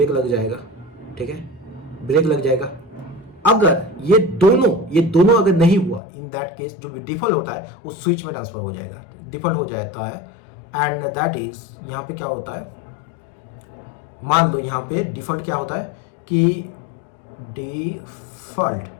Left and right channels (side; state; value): right; drops out; at 6.0 s